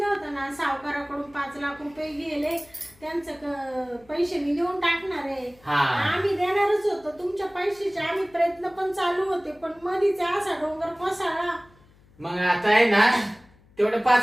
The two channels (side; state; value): left; noise; hum, 28 dB below the sound